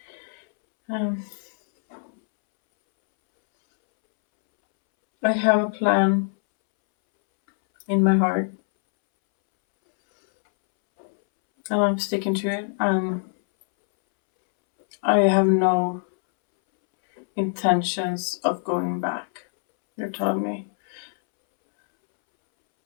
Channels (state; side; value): silent; right; 63 dB below the other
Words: I have a plan in my heart, and I'm sticking to it. I have no intentions of going back. You're telling me